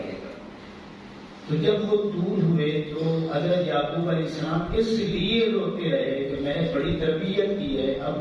گا۔ تو جب وہ دور ہوئے تو حضرت یعقوب علیہ السلام اس لیے روتے رہے کہ میں نے بڑی تربیت کی ہے،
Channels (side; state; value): both; identical; correlation 1.00